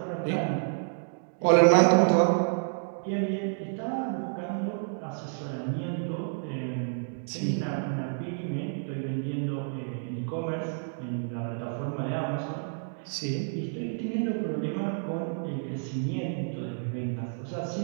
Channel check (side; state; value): left; silent; digital silence